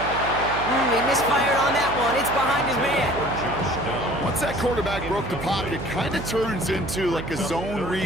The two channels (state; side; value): noise; right; hum, 9 dB below the sound